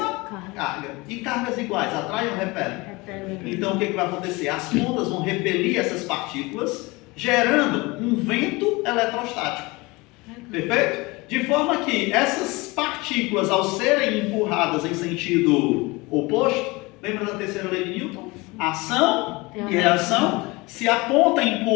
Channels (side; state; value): right; quieter; 23.9 dB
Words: carga. E cargas iguais, atraem ou repelem? Repelem. Então o que vai acontecer? As pontas vão repelir essas partículas, gerando um vento eletrostático. Perfeito? De forma que essas partículas, ao serem empurradas em sentido oposto, lembra da terceira lei de Newton? Ação e reação. Se a ponta